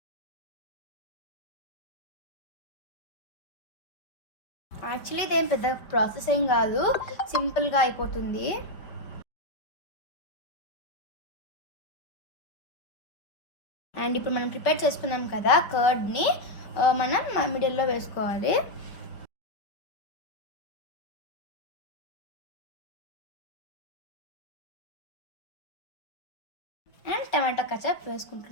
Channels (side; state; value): right; late; 5.1 ms